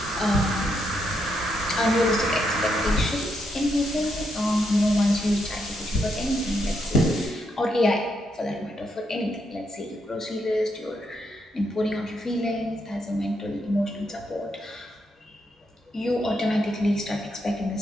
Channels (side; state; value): both; normal; correlation 0.79